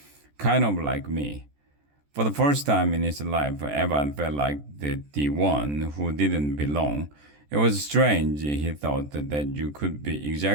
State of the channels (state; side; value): late; left; 14 ms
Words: kind of like me. For the first time in his life, Evan felt like the one who didn't belong. It was strange, he thought, that you could be